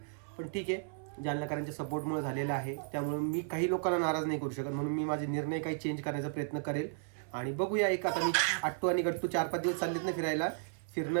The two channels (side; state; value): left; silent; 55 dB below the other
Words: पण ठीक आहे, जालनाकरांच्या सपोर्टमुळे झालेलं आहे. त्यामुळे मी काही लोकांना नाराज नाही करू शकत, म्हणून मी माझे निर्णय काही चेंज करण्याचा प्रयत्न करेल. आणि बघूया, एक आता मी अट्टू आणि गट्टू 4-5 दिवस चाललेत ना फिरायला,